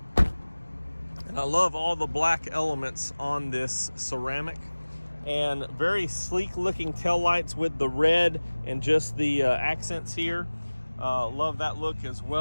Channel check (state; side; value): inverted; both; correlation -1.00